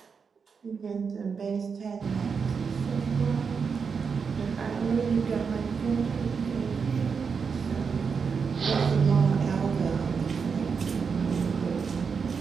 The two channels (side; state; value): left; quieter; 5.8 dB